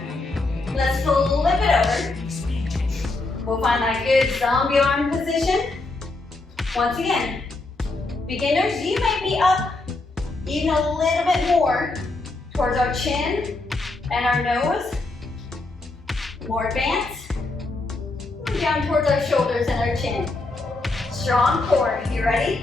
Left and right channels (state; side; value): quieter; right; 3.2 dB